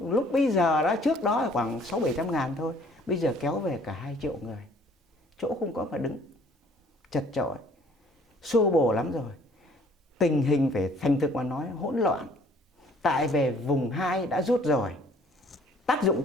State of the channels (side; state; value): both; normal; correlation 0.57